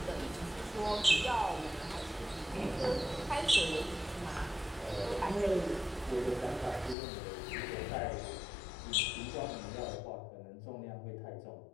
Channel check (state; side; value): drops out; right; at 7.0 s